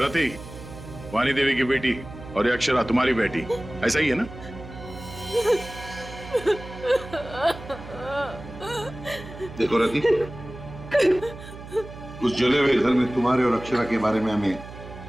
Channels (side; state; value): right; noise; hum, 14 dB below the sound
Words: वाणी देवी की बेटी, और ये अक्षरा तुम्हारी बेटी, ऐसा ही है ना? देखो रति, उस जले हुए घर में तुम्हारे और अक्षरा के बारे में हमें